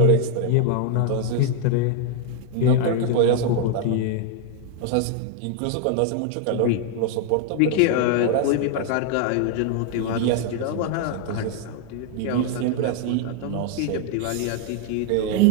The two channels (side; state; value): both; different; correlation 0.00